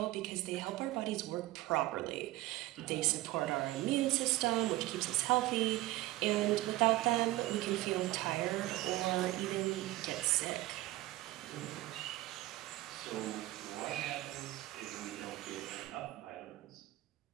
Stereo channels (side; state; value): left; quieter; 17.6 dB